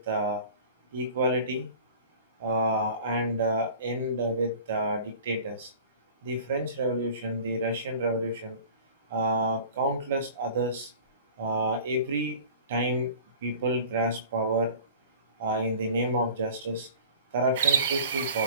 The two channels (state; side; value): inverted; both; correlation -0.44